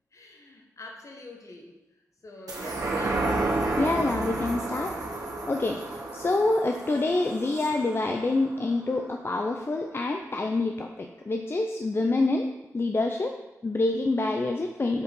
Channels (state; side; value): normal; both; correlation 0.85